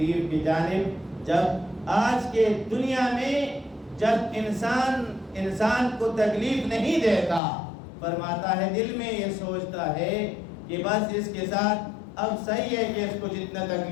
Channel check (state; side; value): drops out; right; at 7.4 s